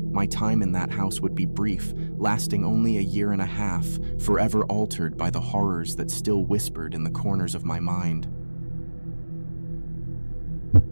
My time in that house would be brief, lasting only a year and a half, forever altered by the horrors that still whispered in the corners of my mind.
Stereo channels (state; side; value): inverted; both; correlation -1.00